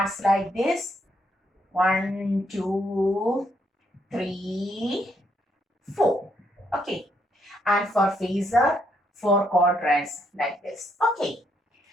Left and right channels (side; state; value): both; normal; correlation 0.74